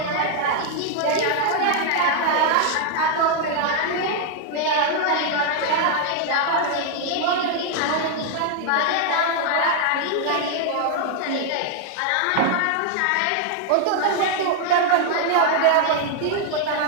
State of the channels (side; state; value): both; different; correlation 0.00